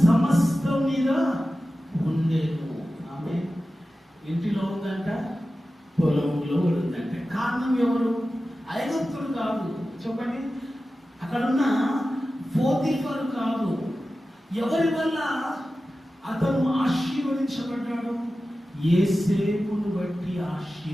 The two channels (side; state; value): both; normal; correlation 0.94